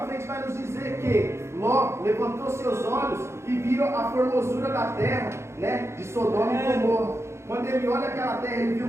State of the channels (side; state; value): left; late; 0.13 ms